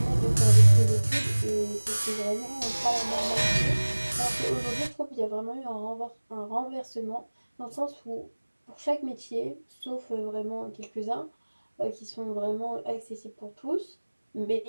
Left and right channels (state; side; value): inverted; both; correlation -1.00